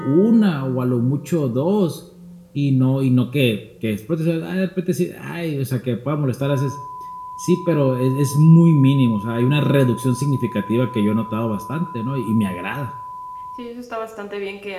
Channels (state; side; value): identical; both; correlation 1.00